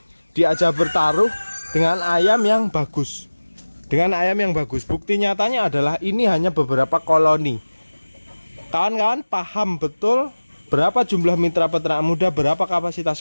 diajak bertaruh dengan ayam yang bagus. Dengan ayam yang bagus. Bukti nyatanya adalah ini hanya beberapa koloni. Kawan-kawan paham betul berapa jumlah mitra peternak muda, berapa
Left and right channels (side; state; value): both; inverted; correlation -1.00